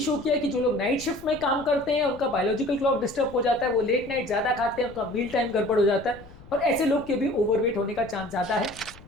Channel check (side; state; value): left; noise; rumble, 20 dB below the sound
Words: किया है कि जो लोग नाइट शिफ्ट में काम करते हैं उनका बायोलॉजिकल क्लॉक डिस्टर्ब हो जाता है, वो लेट नाइट ज़्यादा खाते हैं, उनका मील टाइम गड़बड़ हो जाता है और ऐसे लोग के भी ओवरवेट होने का चांस ज़्यादा है।